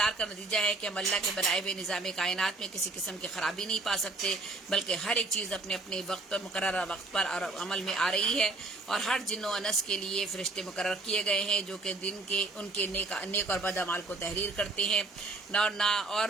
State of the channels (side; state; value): left; quieter; 3.2 dB